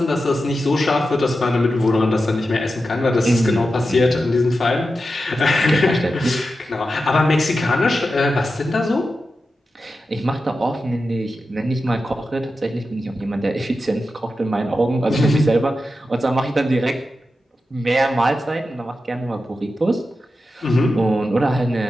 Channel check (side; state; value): both; normal; correlation 0.91